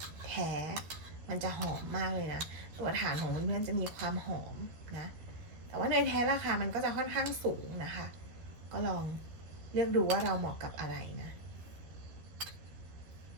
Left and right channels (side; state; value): left; late; 13 ms